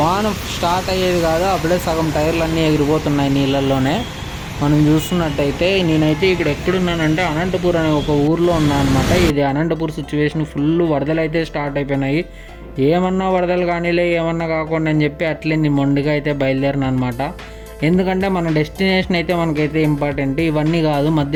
స్టార్ట్ అయ్యేది కాదు, అప్పుడే సగం టైర్లు ఎగిరిపోతున్నాయి నీళ్ళల్లోనే. మనం చూస్తున్నట్టయితే నేనైతే ఇక్కడ ఎక్కడున్నానంటే అనంతపూర్ అనే ఒక ఊర్లో ఉన్నాను అనమాట. ఇది అనంతపూర్ సిచ్యువేషన్, ఫుల్ వరదలు అయితే స్టార్ట్ అయిపోయినాయి. ఏమన్నా వరదలు కానీలే, ఏమన్నా కాకుండా అని చెప్పి అట్లే నేను మొండిగా అయితే బయలుదేరిన అనమాట. ఎందుకంటే మన డెస్టినేషన్ అయితే మనకైతే ఇంపార్టెంట్, ఇవన్నీ కాదు.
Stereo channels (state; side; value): identical; both; correlation 1.00